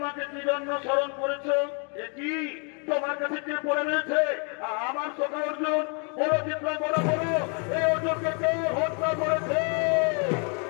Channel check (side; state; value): right; quieter; 37.9 dB